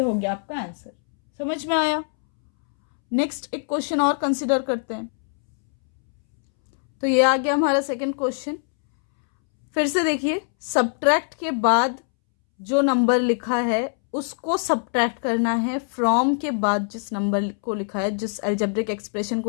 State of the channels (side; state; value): right; silent; 63 dB below the other